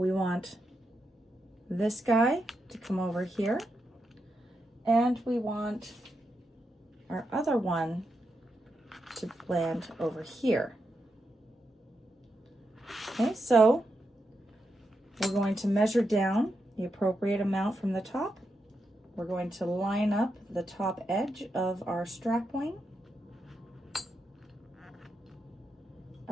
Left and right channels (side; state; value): both; normal; correlation 0.85